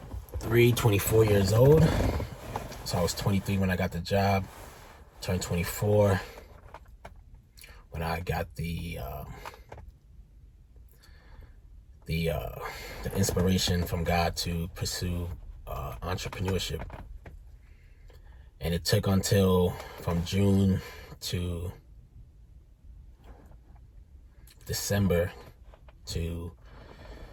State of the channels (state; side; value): identical; both; correlation 1.00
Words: 24 years old. So I was 23 when I got the job, turned 24 when I got the inspiration from God to pursue entrepreneurship. And it took until from June to December to